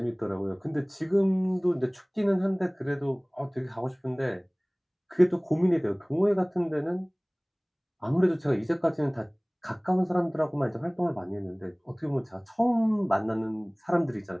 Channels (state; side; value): identical; both; correlation 1.00